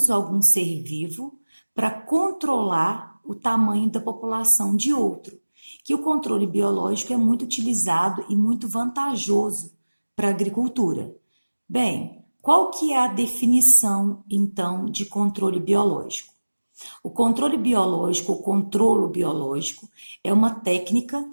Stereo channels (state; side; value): inverted; both; correlation -1.00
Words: algum ser vivo para controlar o tamanho da população de outro. Que o controle biológico é muito utilizado e muito vantajoso para a agricultura. Bem, qual que é a definição, então, de controle biológico? O controle biológico, o controlo biológico, é uma técnica